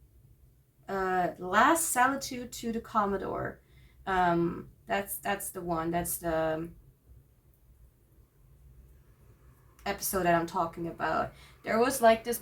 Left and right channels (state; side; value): identical; both; correlation 1.00